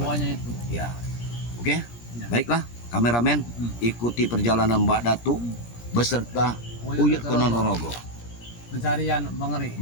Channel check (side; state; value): right; late; 17 ms